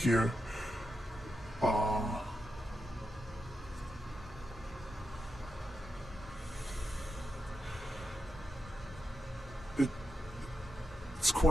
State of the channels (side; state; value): both; normal; correlation 0.87